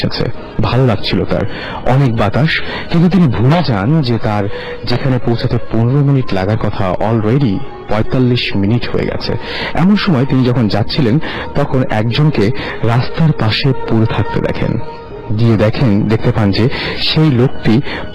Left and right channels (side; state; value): both; identical; correlation 1.00